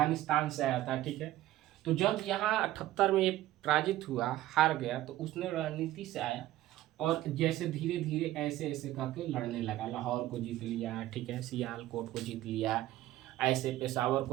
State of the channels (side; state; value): left; quieter; 15.0 dB